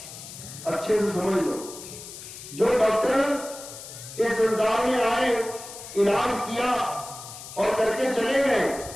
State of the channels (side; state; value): left; noise; hiss, 13 dB below the sound